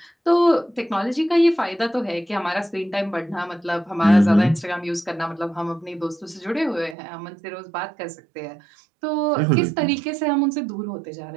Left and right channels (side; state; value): left; drops out; at 7.0 s